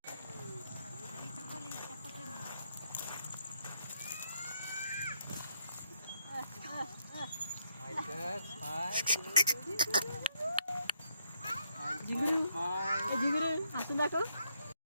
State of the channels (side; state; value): both; inverted; correlation -0.76